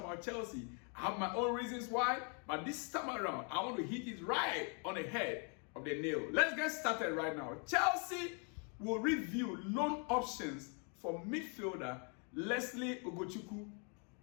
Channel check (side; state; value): right; quieter; 37.8 dB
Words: Chelsea. I have my own reasons why, but this time around, I want to hit it right on the head of the nail. Let's get started right now. Chelsea will review loan options for midfielder Lesley Ugochukwu